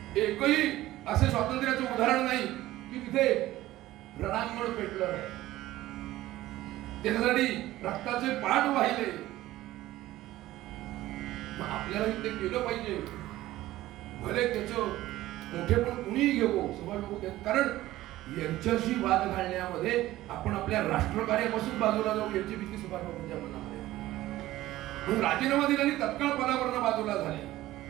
एकही असे स्वातंत्र्याचं उदाहरण नाही की तिथे रणांगण पेटलं नाही. त्याच्यासाठी रक्ताचे पाठ वाहिले. मग आपल्याला ते केलं पाहिजे. भले त्याचं मोठेपण कुणीही घेऊ सुभाष बाबू, कारण यांच्याशी वाद घालण्यामध्ये आपण आपल्या राष्ट्रकार्यापासून बाजूला जाऊ याची भीती सुभाष बाबूंच्या मनामध्ये. म्हणून राजीनामा दिला आणि तत्काळ पदावरनं बाजूला झाले.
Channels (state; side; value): quieter; left; 15.9 dB